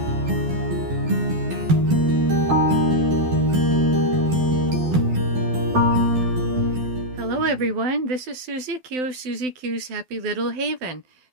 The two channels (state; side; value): late; left; 12 ms